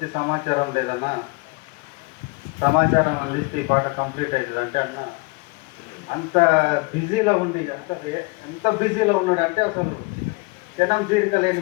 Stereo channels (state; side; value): quieter; right; 27.5 dB